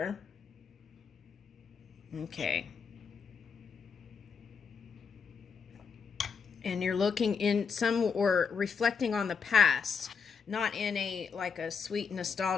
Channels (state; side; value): quieter; right; 5.9 dB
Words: Okay. And you're looking in some or reflecting on the past, not in a like a sweet